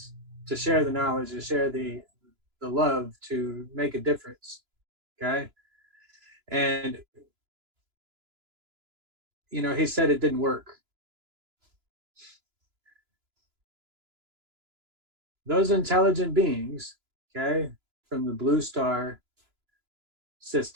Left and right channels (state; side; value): late; left; 3.0 ms